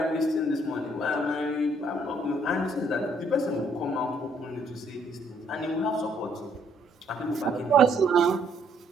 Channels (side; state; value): both; normal; correlation 0.67